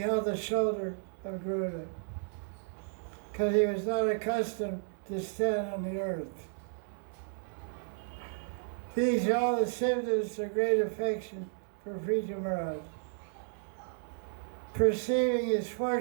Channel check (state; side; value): silent; left; digital silence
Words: the shoulder of Garuda, because he was not accustomed to stand on the earth. These are all the symptoms of great affection for Prithu Maharaj. Perceiving his